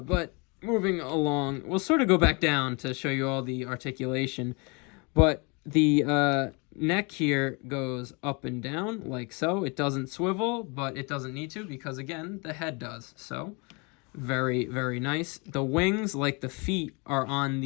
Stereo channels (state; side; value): quieter; right; 30.8 dB